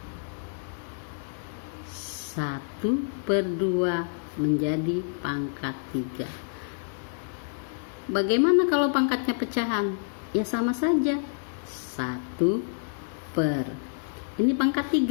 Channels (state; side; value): silent; right; 59 dB below the other